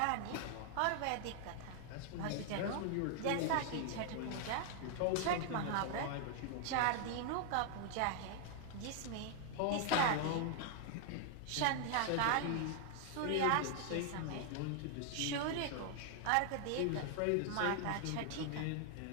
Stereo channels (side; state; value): both; different; correlation 0.00